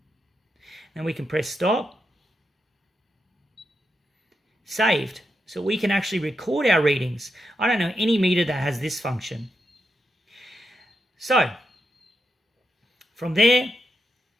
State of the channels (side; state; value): both; normal; correlation 0.85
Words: Then we can press stop. Saved. So we can actually record our readings. I don't know any meter that has this function. So from there,